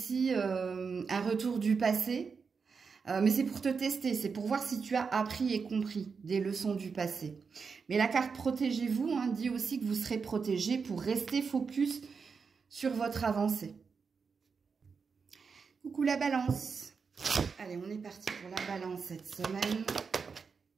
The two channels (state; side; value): quieter; left; 5.4 dB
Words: un retour du passé. Mais c'est pour te tester, c'est pour voir si tu as appris et compris des leçons du passé. Mais la carte protégez-vous hein, dit aussi que vous serez protégé pour rester focus sur votre avancée. Coucou la balance. Allez, on est parti pour la balance cette semaine.